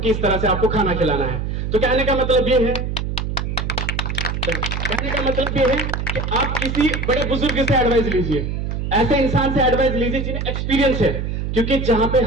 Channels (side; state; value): right; noise; hum, 3 dB below the sound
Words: इस तरह से आपको खाना खिलाना है। तो कहने का मतलब ये है, कि आप किसी बड़े बुजुर्ग से एडवाइस लीजिए, ऐसे इंसान से एडवाइस लीजिए जिन्हें एक्सपीरियंस है, क्योंकि जहां पे